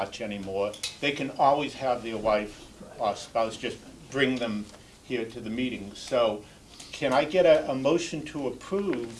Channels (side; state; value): both; identical; correlation 1.00